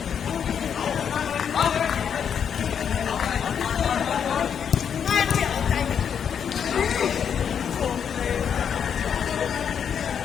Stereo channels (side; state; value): right; quieter; 7.8 dB